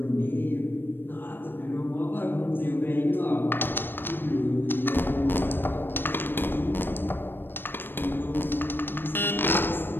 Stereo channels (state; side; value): late; right; 0.097 ms